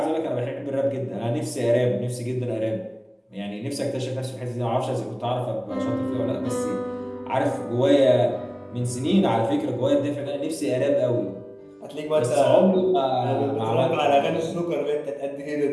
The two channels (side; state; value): both; identical; correlation 1.00